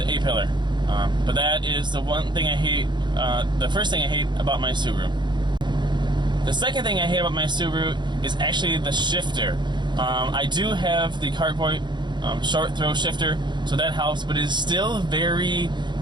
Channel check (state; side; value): late; left; 0.22 ms